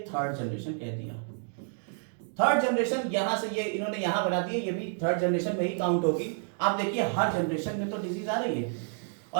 थर्ड जनरेशन कह दिया। थर्ड जनरेशन यहां से ये इन्होंने यहां बना दिए, ये भी थर्ड जनरेशन में ही काउंट होगी। आप देखिए हर जनरेशन में तो डिजीज आ रही है,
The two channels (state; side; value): silent; left; 58 dB below the other